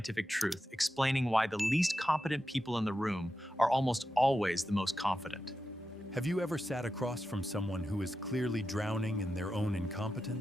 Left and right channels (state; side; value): normal; both; correlation 0.90